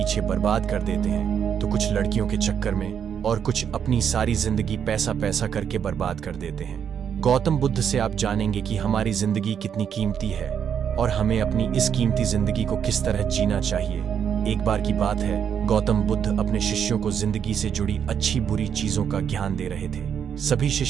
बर्बाद कर देते हैं, तो कुछ लड़कियों के चक्कर में और कुछ अपनी सारी जिंदगी पैसा पैसा करके बर्बाद कर देते हैं। गौतम बुद्ध से आप जानेंगे कि हमारी जिंदगी कितनी कीमती है और हमें अपनी इस कीमती जिंदगी को किस तरह जीना चाहिए। एक बार की बात है, गौतम बुद्ध अपने शिष्यों को जिंदगी से जुड़ी अच्छी बुरी चीजों का ज्ञान दे रहे थे। सभी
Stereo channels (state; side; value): quieter; left; 8.1 dB